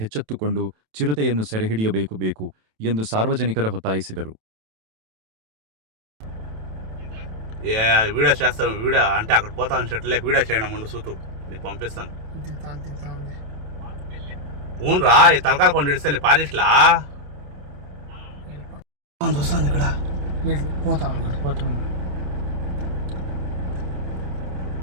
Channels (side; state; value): left; late; 27 ms